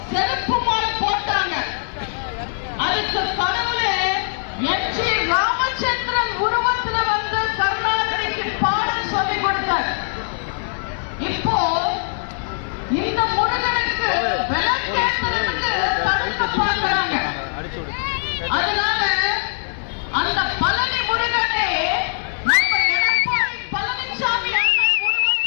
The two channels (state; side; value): silent; right; digital silence